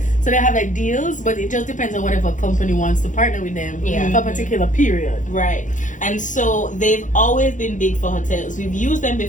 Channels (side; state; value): right; late; 0.37 ms